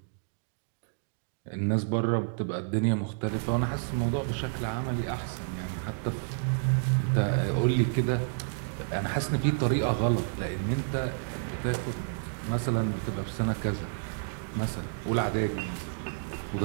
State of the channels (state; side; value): silent; left; digital silence